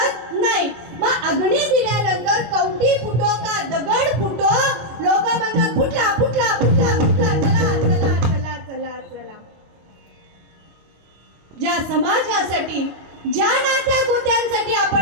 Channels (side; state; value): left; late; 25 ms